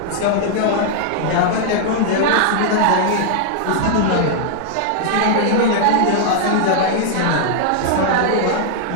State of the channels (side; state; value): both; different; correlation -0.01